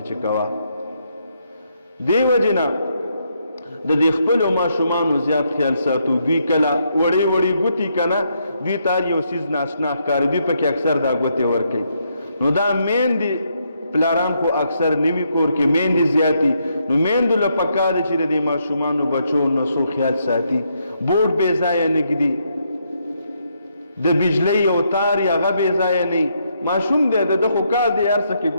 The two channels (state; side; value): inverted; both; correlation -0.76